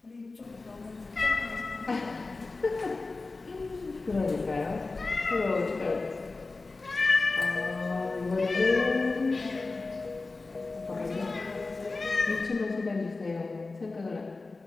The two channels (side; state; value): right; quieter; 3.6 dB